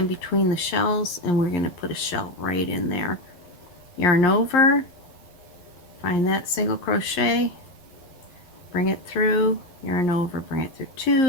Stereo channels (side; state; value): right; late; 11 ms